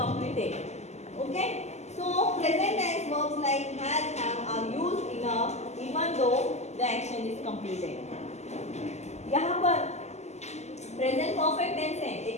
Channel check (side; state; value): right; late; 0.33 ms